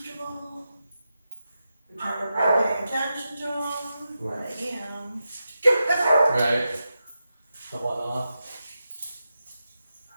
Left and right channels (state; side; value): inverted; both; correlation -0.89